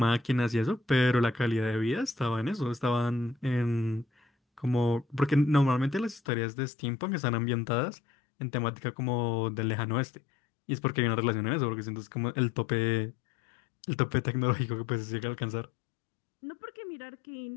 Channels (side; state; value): right; drops out; at 6.2 s